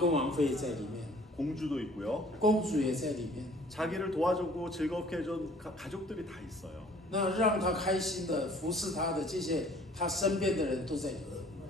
王妃在里面， 공주도 있고요. 公主也在里面。 자기를 도와주고 즐겁게 해준 가족들이 다 있어요. 那让他开心的服侍他的这些他身边的人都在里面。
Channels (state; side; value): normal; both; correlation 0.54